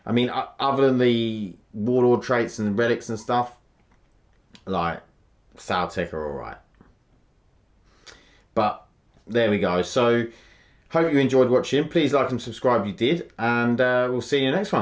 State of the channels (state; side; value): identical; both; correlation 1.00